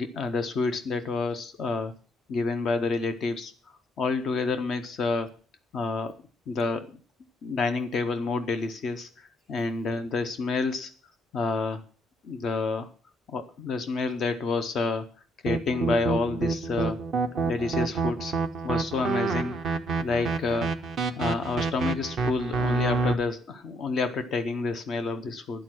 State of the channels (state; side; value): normal; both; correlation 0.71